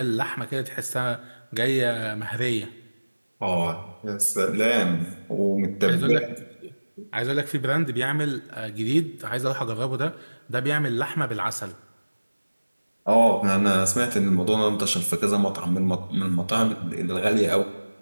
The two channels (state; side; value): inverted; both; correlation -1.00